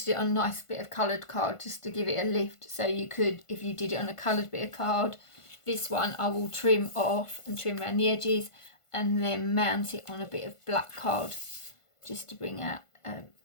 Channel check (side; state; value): right; late; 1.5 ms